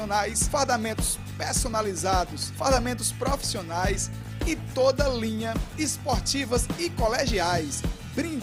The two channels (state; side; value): identical; both; correlation 1.00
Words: fardamentos personalizados, fardamentos profissionais e toda linha esportivas e colegiais,